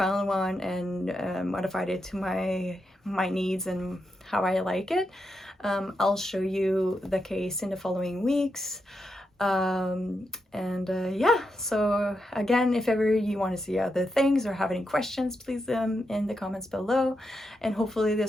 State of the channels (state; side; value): normal; both; correlation 0.85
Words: one and modified it to my needs and how I like it. I'll show you the case in the following weeks. Yeah, so again, if ever you want to see other things or have any questions, please leave them in the comments below, and hopefully